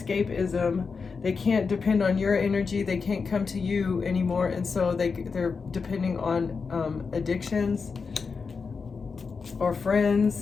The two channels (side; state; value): right; quieter; 5.1 dB